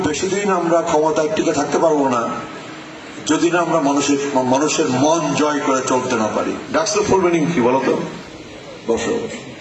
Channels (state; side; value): identical; both; correlation 1.00